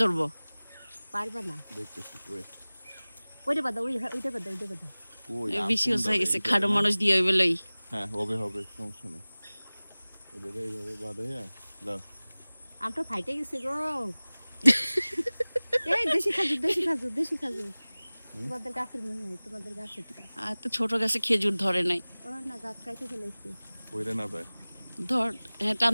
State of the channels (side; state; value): both; inverted; correlation -0.99